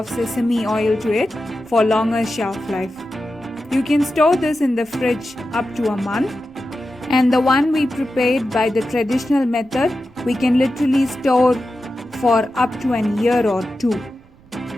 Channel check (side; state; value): right; noise; rumble, 27 dB below the sound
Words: sesame oil to it for longer shelf life. You can store this in the fridge up to a month, and the one we prepared by the traditional method, we can literally store for up to an year or 2.